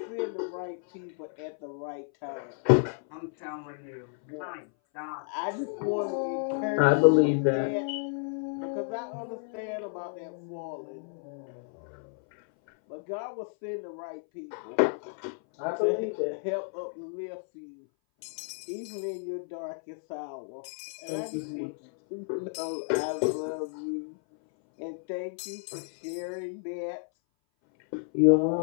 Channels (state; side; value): silent; right; 57 dB below the other